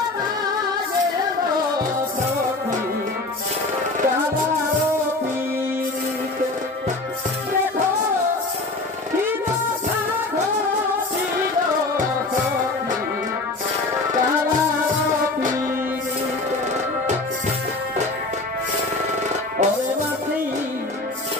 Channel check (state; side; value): quieter; right; 3.1 dB